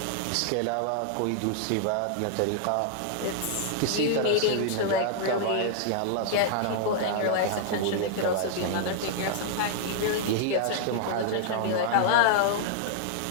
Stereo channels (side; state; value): both; different; correlation -0.01